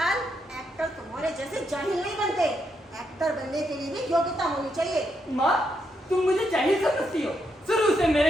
एक्टर तुम्हारे जैसे जाहिल नहीं बनते, एक्टर बनने के लिए भी योग्यता होनी चाहिए। माँ तुम मुझे जाहिल समझती हो, शुरू से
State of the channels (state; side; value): normal; both; correlation 0.79